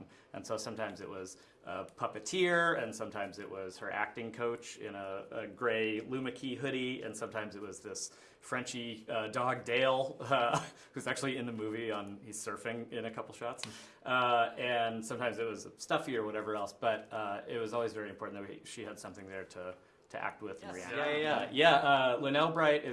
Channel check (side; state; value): both; identical; correlation 1.00